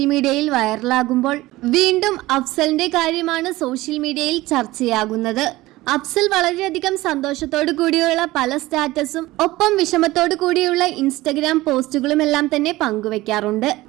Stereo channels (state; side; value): quieter; left; 18.4 dB